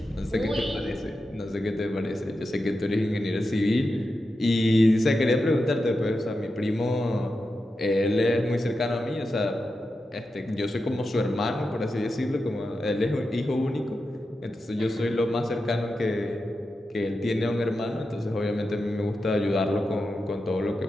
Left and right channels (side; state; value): both; normal; correlation 0.90